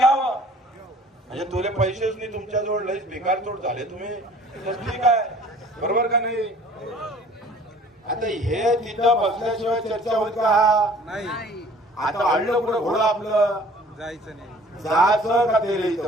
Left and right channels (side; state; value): both; normal; correlation 0.51